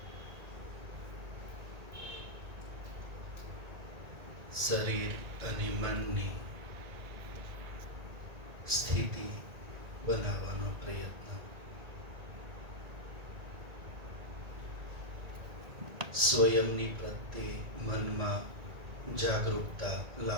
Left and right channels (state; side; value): late; left; 1.9 ms